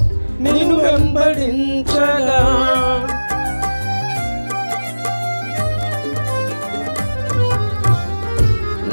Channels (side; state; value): both; inverted; correlation -1.00